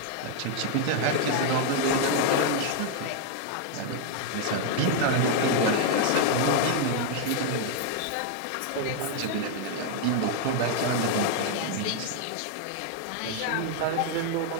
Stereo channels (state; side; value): different; both; correlation 0.00